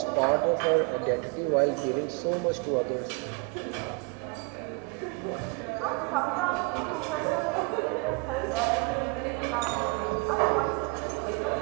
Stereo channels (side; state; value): left; quieter; 29.9 dB